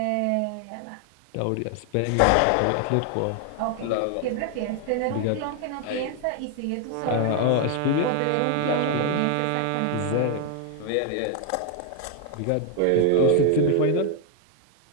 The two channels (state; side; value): different; both; correlation 0.00